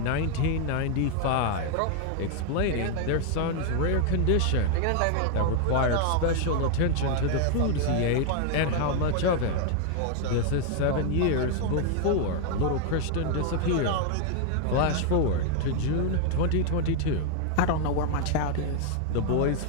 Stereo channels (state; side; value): different; both; correlation 0.00